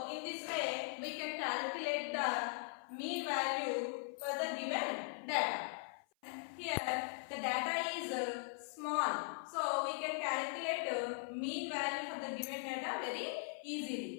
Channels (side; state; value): right; silent; 51 dB below the other